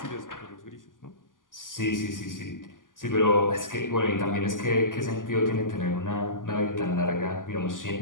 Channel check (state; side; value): late; right; 0.89 ms